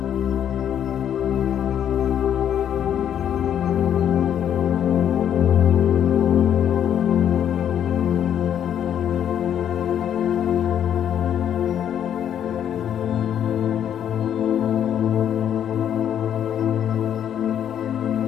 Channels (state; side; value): quieter; right; 9.6 dB